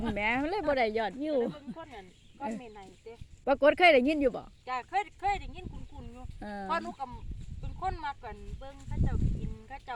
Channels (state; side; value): identical; both; correlation 1.00